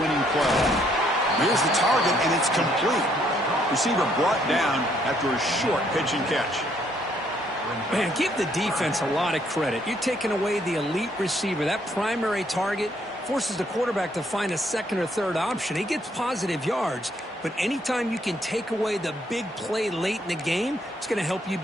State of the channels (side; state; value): both; normal; correlation 0.69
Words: play? Here's the target, and it's complete. Receiver brought down after a short pitch and catch. Man, give the defense a lot of credit. You're taking away the elite receiver. That primary target forces the quarterback to find a second or third option. He gets positive yards, but anytime you can take away the big play late in the game, it's going to help you